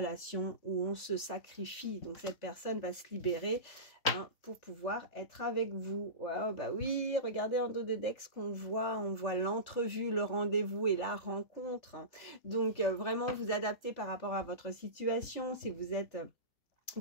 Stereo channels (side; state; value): right; late; 3.4 ms